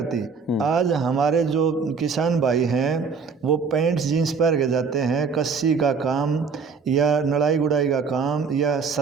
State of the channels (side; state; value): left; quieter; 5.4 dB